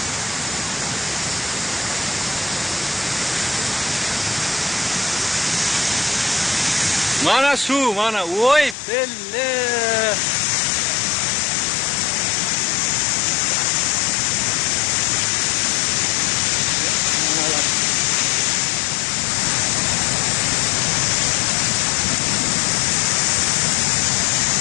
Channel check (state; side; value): drops out; right; at 8.8 s